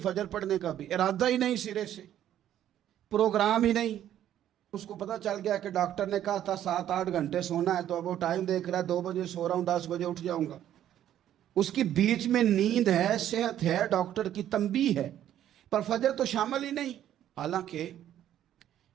پڑھنے کا بھی ارادہ ہی نہیں، سرے سے پروگرام ہی نہیں۔ اس کو پتہ چل گیا کہ ڈاکٹر نے کہا تھا 7-8 گھنٹے سونا ہے، تو اب وہ ٹائم دیکھ رہا ہے 2 بجے سو رہا ہوں، 10 بجے اٹھ جاؤں گا۔ اس کی بیچ میں نیند ہے، صحت ہے، ڈاکٹر کی تنبیہ ہے، پر فجر تو شامل ہی نہیں۔ حالانکہ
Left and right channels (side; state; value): left; quieter; 11.3 dB